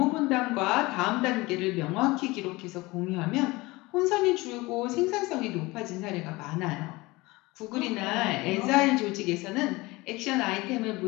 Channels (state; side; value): quieter; right; 22.1 dB